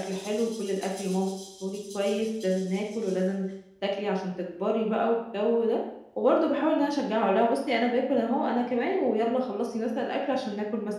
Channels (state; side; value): identical; both; correlation 1.00